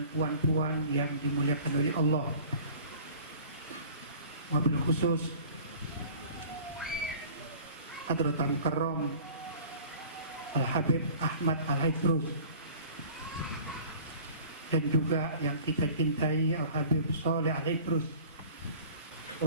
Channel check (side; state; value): both; inverted; correlation -0.46